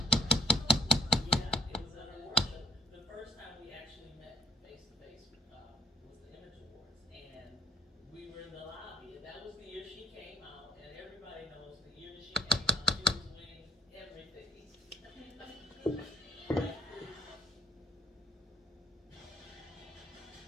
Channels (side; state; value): both; normal; correlation 0.61